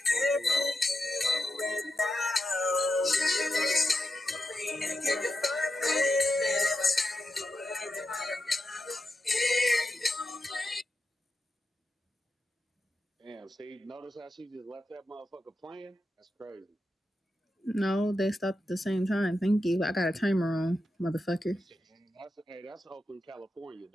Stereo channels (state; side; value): normal; both; correlation 0.89